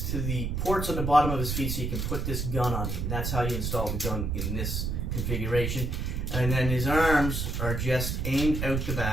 to the ports on the bottom of his feet so you can put this gun on him. And that's how you install the gun in this configuration. And then his arms are just aimed out the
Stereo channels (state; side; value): noise; right; rumble, 1 dB below the sound